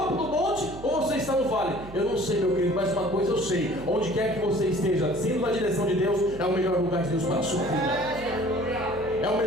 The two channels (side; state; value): right; noise; hum, 15 dB below the sound